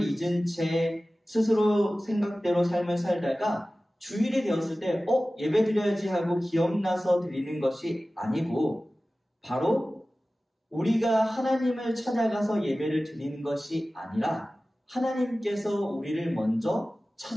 잊은 채 스스로 생각대로 삶을 살다가 주일이 되었을 때 예배 드려야지 하고 기억나서 드리는 것이 아니고 바로 우리가 하나님을 찾아가서 예배를 드리는 것이 아니라 하나님께서 우리를 먼저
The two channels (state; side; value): normal; both; correlation 0.96